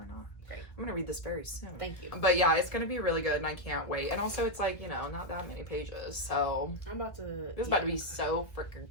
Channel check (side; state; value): right; late; 1.4 ms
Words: not. Great. I'm gonna read this very soon. Thank you. But yeah, it's gonna be really good, and I can't wait. And also, it's like not that many pages, so I'm about to. this is about to be so